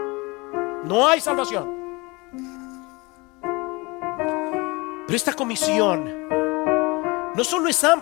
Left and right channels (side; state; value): right; quieter; 25.3 dB